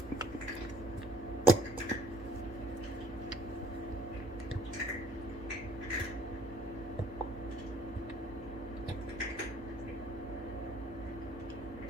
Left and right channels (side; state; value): right; noise; hum, 16 dB below the sound